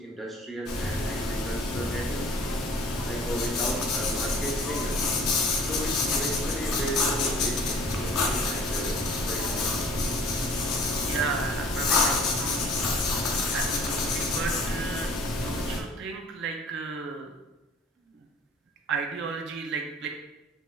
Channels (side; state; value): both; normal; correlation 0.50